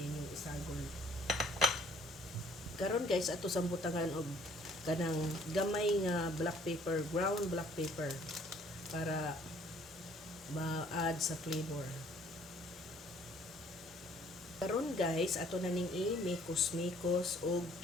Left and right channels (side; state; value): both; normal; correlation 0.59